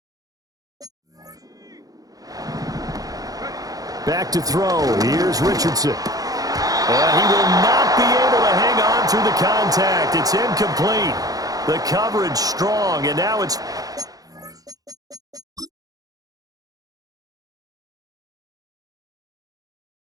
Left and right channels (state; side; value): late; left; 0.18 ms